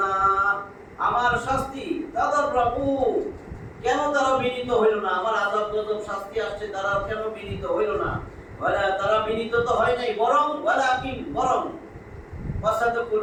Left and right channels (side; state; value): both; identical; correlation 1.00